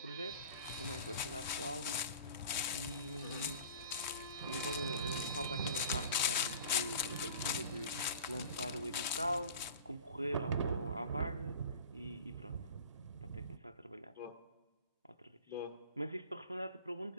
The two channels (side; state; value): both; inverted; correlation -0.40